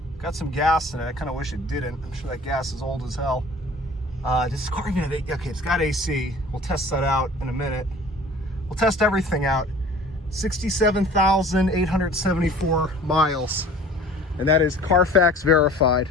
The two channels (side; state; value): both; normal; correlation 0.46